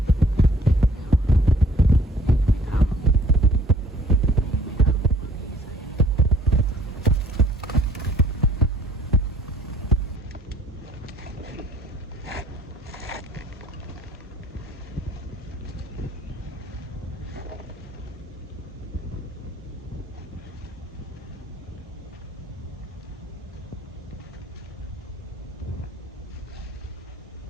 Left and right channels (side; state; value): both; normal; correlation 0.57